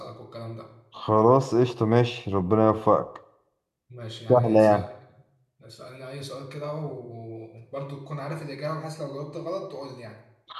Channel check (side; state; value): both; identical; correlation 1.00